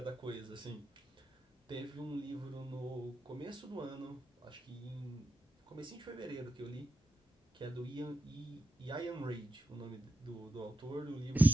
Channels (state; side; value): normal; both; correlation 0.87